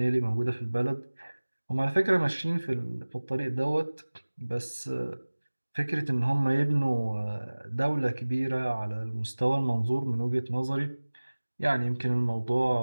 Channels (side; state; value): both; inverted; correlation -1.00